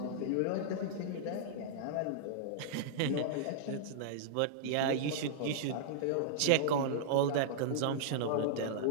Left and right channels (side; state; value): both; different; correlation -0.02